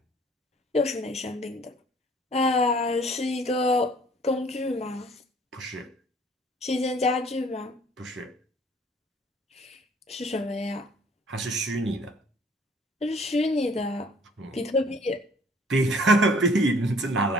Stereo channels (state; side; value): normal; both; correlation 0.56